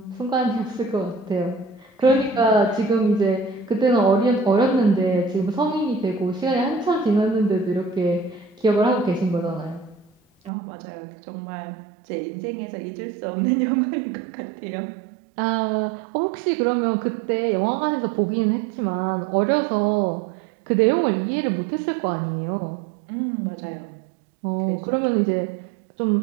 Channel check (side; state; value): left; drops out; at 10.5 s